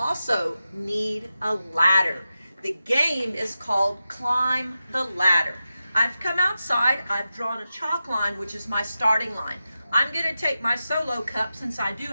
need a ladder. The game is called Climb the Ladder. I've come outside, I've drawn a chalk line, which is my starting line. I'm going to take my solo cup, since I do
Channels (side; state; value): both; inverted; correlation -0.92